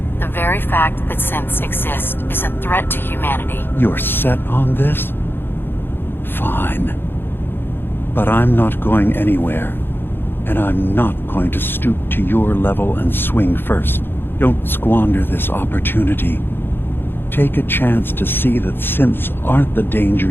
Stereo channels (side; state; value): right; late; 0.10 ms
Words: The very fact that synths exist is a threat to humanity. You're set on this? Fine. But I'm not going anywhere. And I'm not going to stoop to your level and swing first. Don't squander this opportunity. Take a chance to see that synths aren't the danger